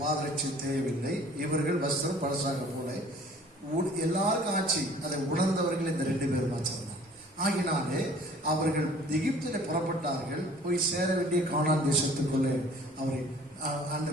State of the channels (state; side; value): normal; both; correlation 0.51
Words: தேவையில்லை, இவர்கள் வஸ்திரம் பழசாக போல எல்லாருக்கும் ஆட்சி. அதை உணர்ந்தவர்கள் இந்த 2 பேரும் ஆச்சாரம். ஆகினாலே அவர்கள் எகிப்திலே புறப்பட்டார்கள், போய் சேர வேண்டிய கானான் தேசத்துக்குள்ளே அவரை